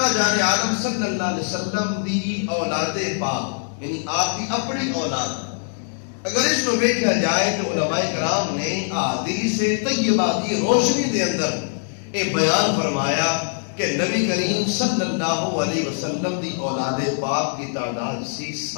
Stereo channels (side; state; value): right; silent; digital silence